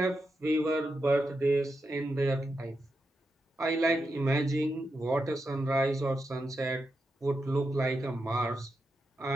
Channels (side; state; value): both; normal; correlation 0.86